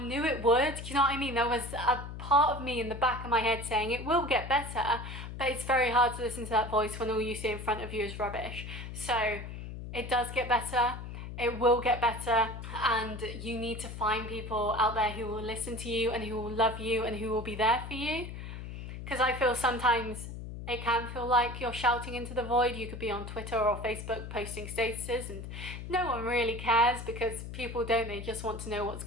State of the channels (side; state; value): left; noise; hum, 9 dB below the sound